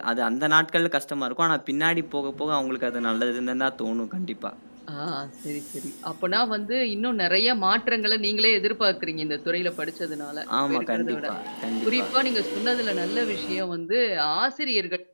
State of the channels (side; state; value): both; inverted; correlation -1.00